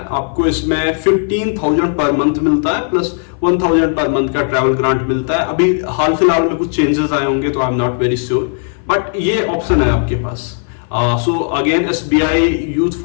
आपको इसमें 15,000 पर मंथ मिलता है, प्लस 1,000 पर मंथ का ट्रैवल ग्रांट मिलता है। अभी हाल फिलहाल में कुछ चेंजेस आए होंगे, तो I am not very sure, but ये ऑप्शन है आपके पास। So again, SBI Youth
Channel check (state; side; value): silent; right; 56 dB below the other